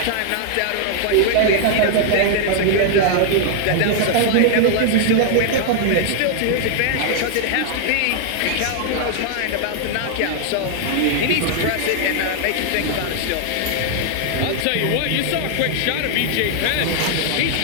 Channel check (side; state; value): both; different; correlation 0.00